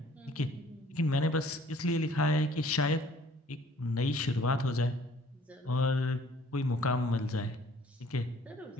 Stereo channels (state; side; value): normal; both; correlation 0.56